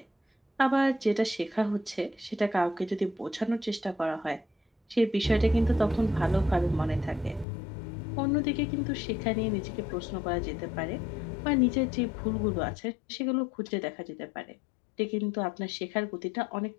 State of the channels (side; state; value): right; drops out; at 7.5 s